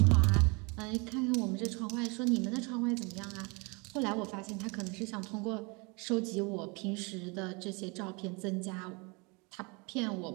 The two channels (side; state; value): left; quieter; 29.9 dB